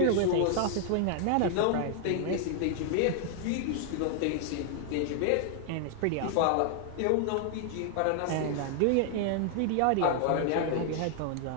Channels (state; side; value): different; both; correlation 0.00